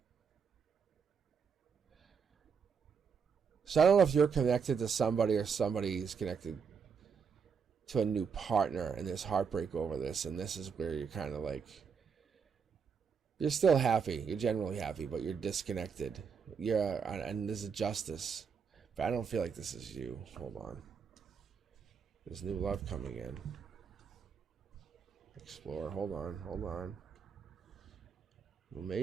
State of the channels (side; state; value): left; quieter; 6.3 dB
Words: So I don't know if you're connected to somebody or somebody's connected to a new partner and there's heartbreak over this, and this is where you're kind of like, you're still happy, you're generally happy, but you're disconnected. And there's a justice, but I don't feel like this is you. Hold on. There's new love coming in. Explore. Hold on. Well,